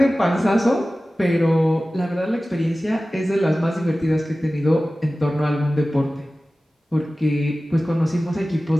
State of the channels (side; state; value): both; normal; correlation 0.96